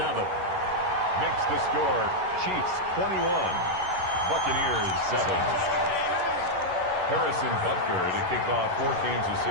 Makes the score Chiefs 21, Buccaneers 7. Harrison Butker to kick off for Kansas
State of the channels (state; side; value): late; left; 11 ms